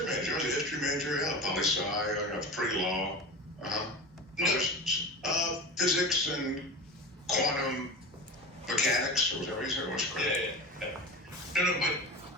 major? I was a history major. Yeah, poli-sci. I got pre-law. No. Physics and quantum mechanics, or whatever you said. What's correct? Yeah. No, but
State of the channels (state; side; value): normal; both; correlation 0.30